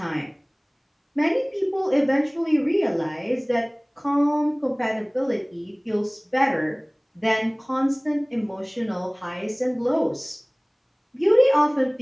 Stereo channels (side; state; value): both; identical; correlation 1.00